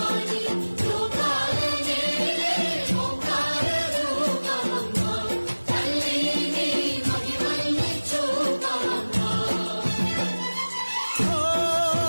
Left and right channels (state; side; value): inverted; both; correlation -1.00